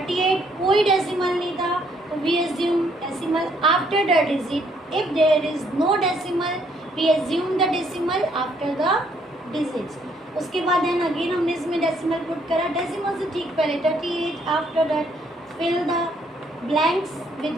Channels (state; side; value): normal; both; correlation 0.68